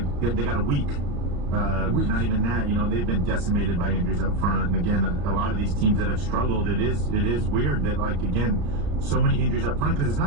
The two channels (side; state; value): left; late; 34 ms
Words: got a week. Not even that, you know, they've been decimated by injuries up front. And again, a lot of these teams that have struggled, it is weird that, like, again, so many injuries up front, because it's